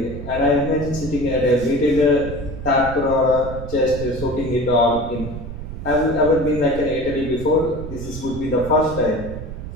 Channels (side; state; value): right; noise; rumble, 9 dB below the sound